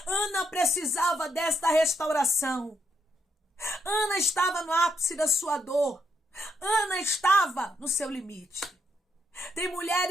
Ana precisava desta restauração. Ana estava no ápice da sua dor. Ana estava no seu limite. Tem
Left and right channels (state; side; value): normal; both; correlation 0.77